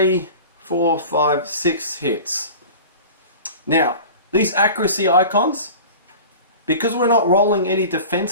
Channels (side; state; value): both; inverted; correlation -0.37